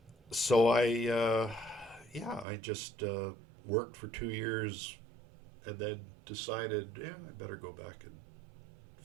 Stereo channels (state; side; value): drops out; left; at 2.5 s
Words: So I just worked for 2 years and then decided, I better go back and